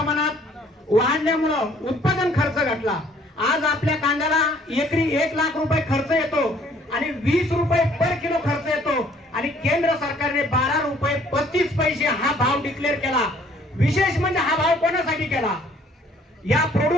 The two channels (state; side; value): normal; both; correlation 0.60